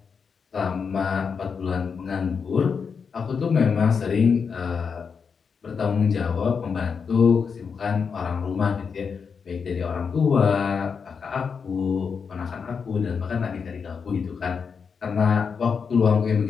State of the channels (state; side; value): quieter; right; 5.9 dB